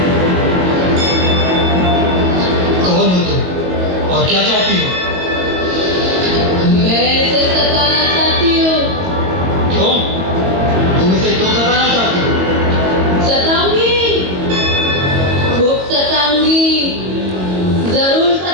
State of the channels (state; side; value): late; left; 22 ms